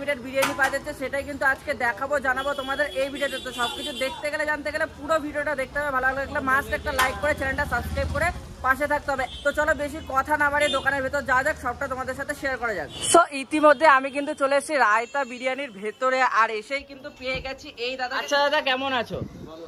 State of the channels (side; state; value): both; identical; correlation 1.00